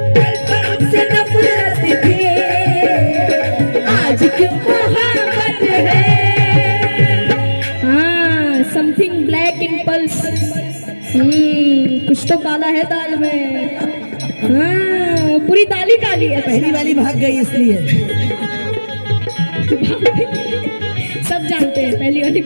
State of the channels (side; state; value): both; inverted; correlation -1.00